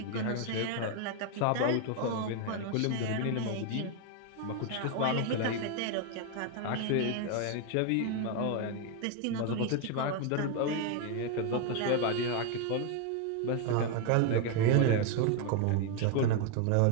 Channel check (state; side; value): different; both; correlation 0.01